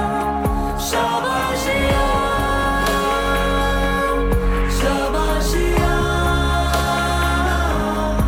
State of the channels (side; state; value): both; identical; correlation 1.00